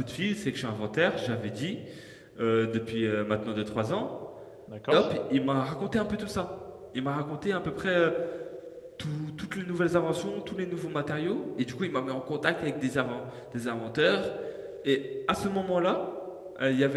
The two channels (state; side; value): identical; both; correlation 1.00